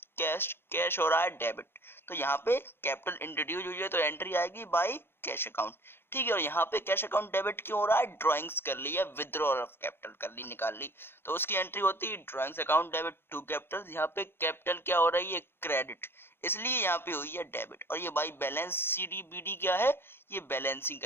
कैश कैश हो रहा है डेबिट, तो यहाँ पे कैपिटल इंट्रोड्यूस हुई है तो एंट्री आएगी बाय कैश अकाउंट। ठीक है, और यहाँ पे कैश अकाउंट डेबिट क्यों हो रहा है, ड्रॉइंग्स कर ली है, विथड्रॉल ऑफ कैपिटल कर ली, निकाल ली, तो उसकी एंट्री होती है drawings account debit to capital. यहाँ पे कैपिटल क्या हो रही है, क्रेडिट, इसलिए यहाँ पे हुई है डेबिट। और ये बाई बैलेंस CDBD क्या है, ये बैलेंसिंग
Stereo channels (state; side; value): late; right; 0.11 ms